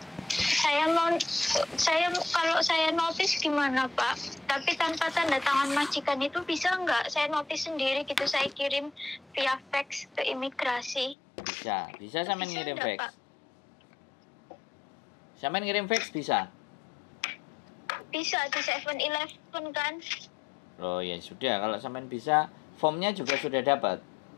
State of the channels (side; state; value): right; drops out; at 11.2 s